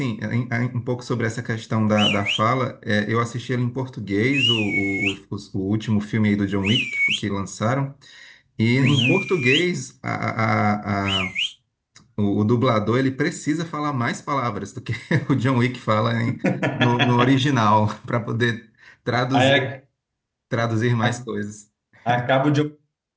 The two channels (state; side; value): identical; both; correlation 1.00